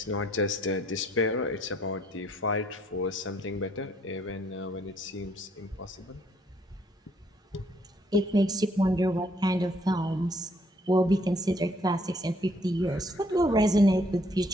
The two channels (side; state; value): both; normal; correlation 0.66